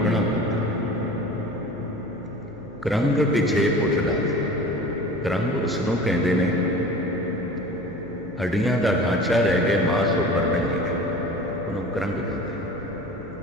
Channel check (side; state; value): right; noise; hum, 22 dB below the sound